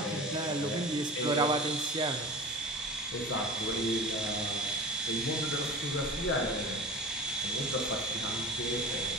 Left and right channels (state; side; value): normal; both; correlation 0.34